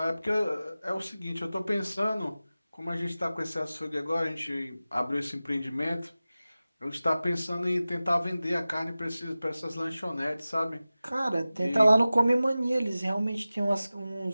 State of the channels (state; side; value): inverted; both; correlation -0.96